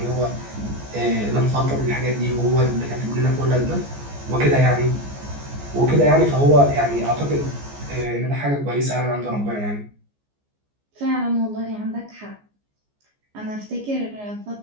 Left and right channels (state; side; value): late; left; 14 ms